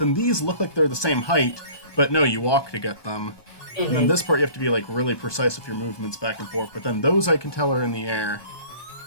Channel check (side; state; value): right; late; 1.2 ms